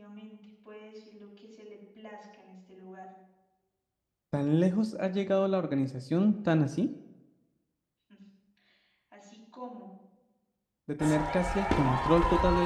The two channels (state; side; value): identical; both; correlation 1.00